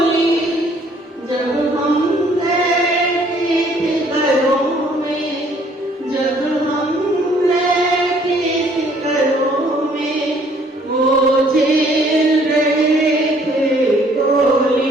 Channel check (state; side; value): normal; both; correlation 0.61